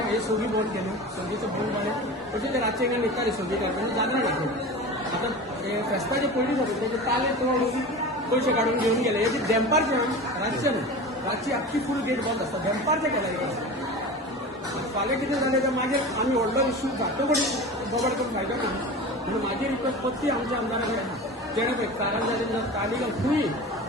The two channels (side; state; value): both; normal; correlation 0.32